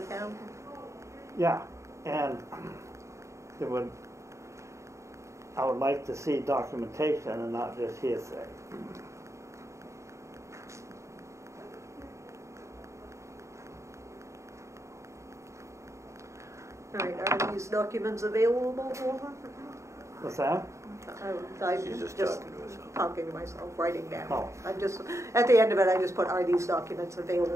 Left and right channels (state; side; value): late; left; 0.14 ms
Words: town? Yeah, and I would like to see documentation and not just hearsay. All right, are these documents available? What's that? I'm She's just just talking to herself. talking to myself, writing down. Oh. I'm just, at the end of it, I just put, are these documents